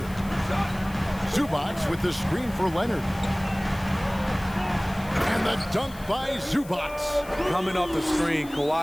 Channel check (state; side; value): noise; left; hiss, 20 dB below the sound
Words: Zubac with the screen for Leonard. And And the dunk by Zubac. Coming off the screen,